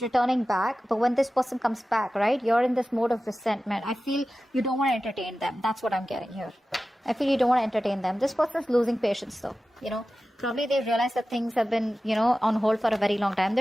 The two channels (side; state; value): both; normal; correlation 0.95